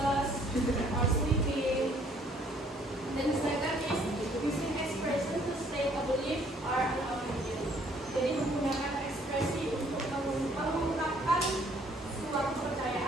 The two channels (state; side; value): normal; both; correlation 0.62